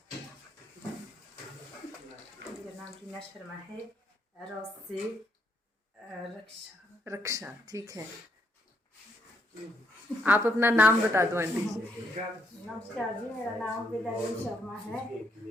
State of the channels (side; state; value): both; normal; correlation 0.75